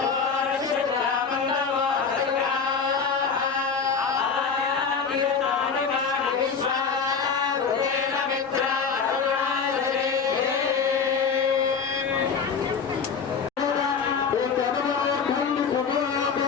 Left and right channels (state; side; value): quieter; right; 5.8 dB